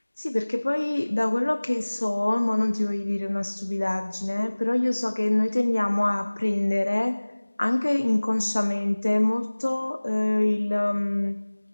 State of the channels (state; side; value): inverted; both; correlation -1.00